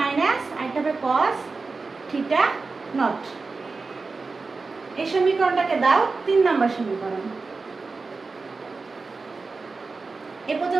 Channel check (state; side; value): quieter; left; 4.1 dB